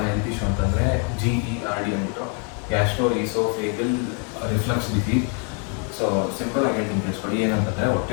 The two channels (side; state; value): right; quieter; 39.1 dB